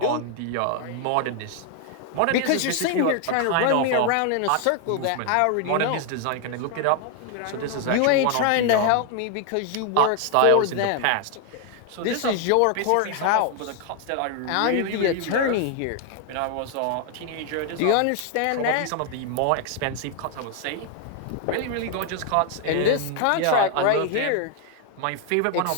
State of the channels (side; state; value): both; different; correlation 0.00